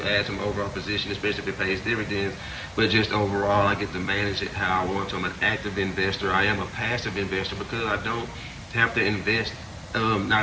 add some overall position, especially if it pays dividends. But just overall, I get to manage it how I want to. I'm an active investor. I am a passive investor because I don't have to invest.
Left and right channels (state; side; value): identical; both; correlation 1.00